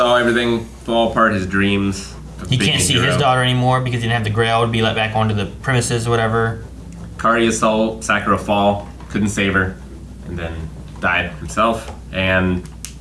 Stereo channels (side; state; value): both; identical; correlation 1.00